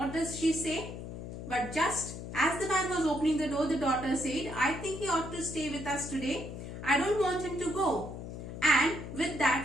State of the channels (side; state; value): left; noise; hum, 9 dB below the sound